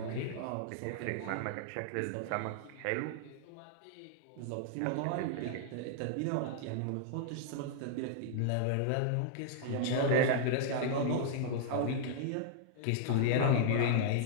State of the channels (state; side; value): different; both; correlation -0.01